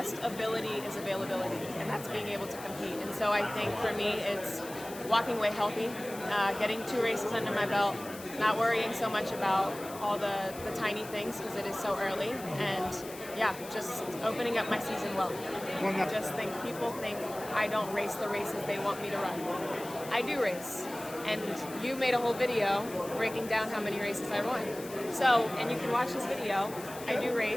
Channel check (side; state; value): left; noise; hiss, 15 dB below the sound